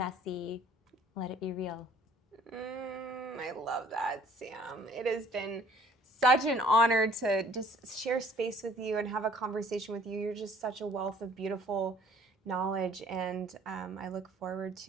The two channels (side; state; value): both; normal; correlation 0.56